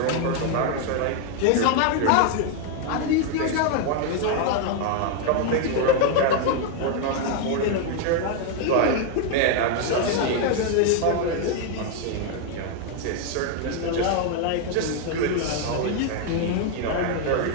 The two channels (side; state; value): both; different; correlation 0.00